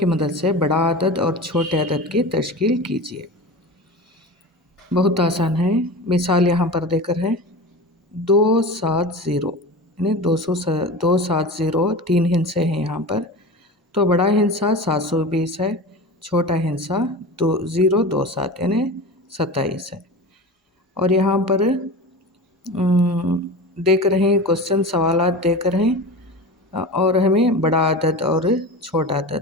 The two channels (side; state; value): both; normal; correlation 0.30